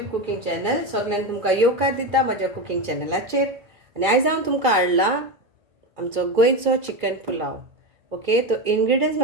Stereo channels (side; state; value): left; late; 2.3 ms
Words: cooking channel. सगळ्यांक तुमकां येवकार दिता म्हज्या कुकिंग चॅनलाचेर. आनी आयज हांव तुमकां हाडला आमचो गोंयचो चिकन पुलाव. ओके, तो इंग्रेडियंट्स